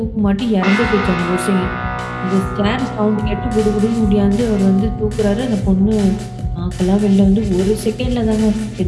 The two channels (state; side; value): identical; both; correlation 1.00